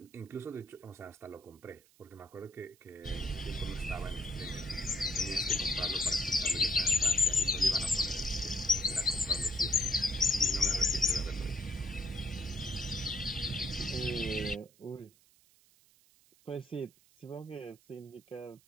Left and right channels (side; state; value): right; noise; hiss, 30 dB below the sound